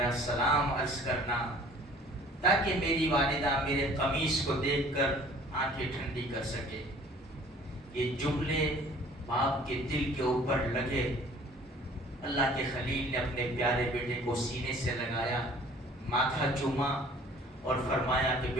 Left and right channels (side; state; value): both; normal; correlation 0.51